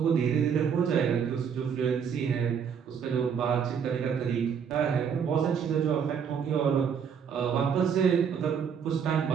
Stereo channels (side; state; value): left; quieter; 7.2 dB